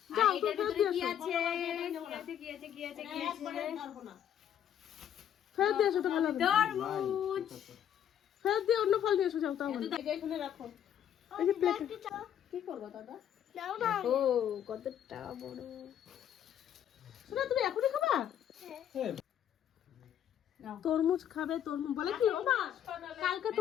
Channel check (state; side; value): quieter; right; 9.9 dB